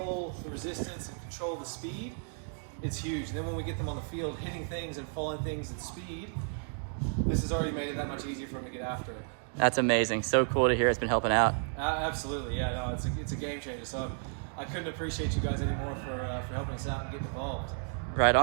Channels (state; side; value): silent; left; 56 dB below the other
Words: the resistance and control the speed, it's huge. And then when we get them on the field hitting things and falling things at speed, this has already made it that much easier for them to get after it. That's amazing. So cool to hear it's been helping out. Absolutely, yeah, no, it's a game changer. So I couldn't appreciate you guys anymore for helping us out and getting involved. Right